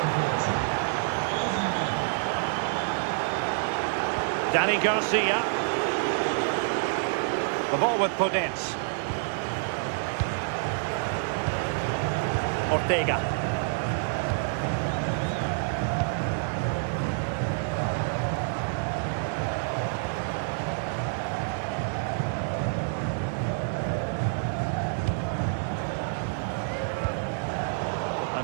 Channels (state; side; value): silent; left; 59 dB below the other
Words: Dani Garcia. The ball with Podence. Ortega.